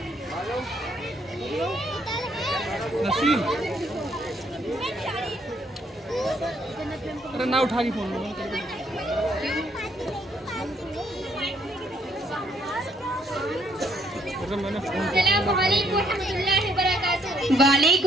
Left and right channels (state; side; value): normal; both; correlation 0.68